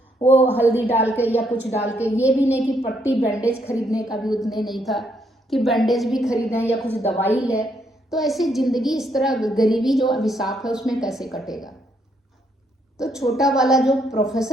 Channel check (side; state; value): both; normal; correlation 0.73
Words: वो हल्दी डाल के या कुछ डाल के, ये भी नहीं कि पट्टी बैंडेज खरीदने का भी उतने नहीं था कि बैंडेज भी खरीदें या कुछ दवाई ले। तो ऐसी जिंदगी, इस तरह गरीबी जो अभिशाप है उसमें कैसे कटेगा। तो छोटा वाला जो